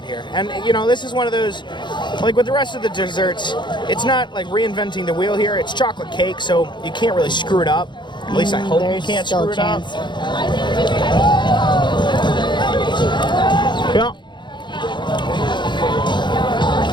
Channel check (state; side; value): late; right; 0.22 ms